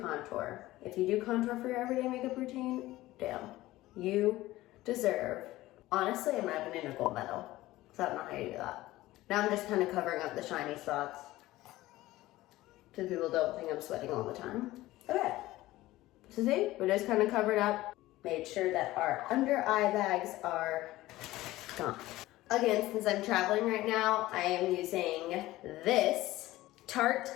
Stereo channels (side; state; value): right; quieter; 17.1 dB